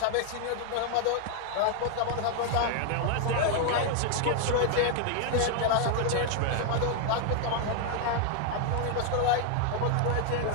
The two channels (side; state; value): both; different; correlation 0.00